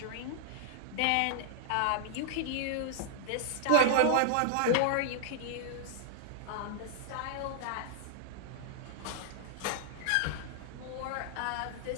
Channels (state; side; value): different; both; correlation -0.01